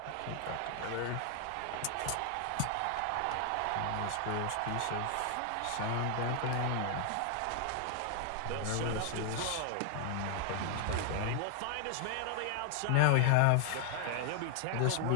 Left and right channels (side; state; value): both; different; correlation 0.00